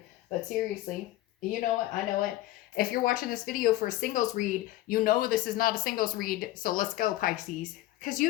But seriously, you know it. I know it. If you're watching this video for a singles read, you know this is not a singles read. So let's go, Pisces. Because you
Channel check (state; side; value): quieter; right; 16.0 dB